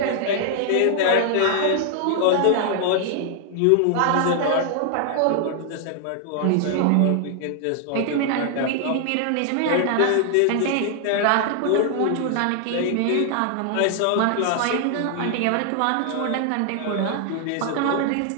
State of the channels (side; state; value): both; different; correlation 0.00